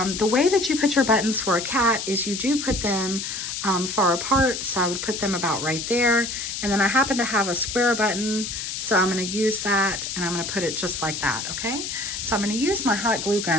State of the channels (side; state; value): left; noise; hiss, 5 dB below the sound